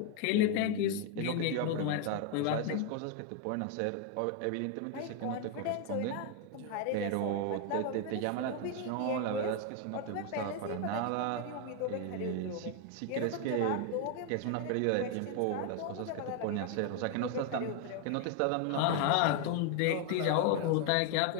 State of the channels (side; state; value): both; different; correlation 0.01